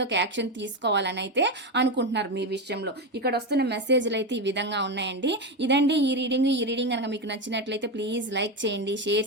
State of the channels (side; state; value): both; normal; correlation 0.13